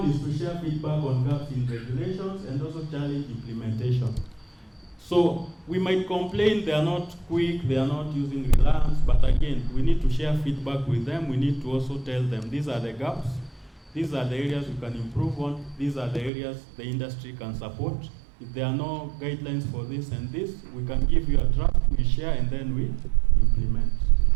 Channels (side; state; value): left; drops out; at 16.3 s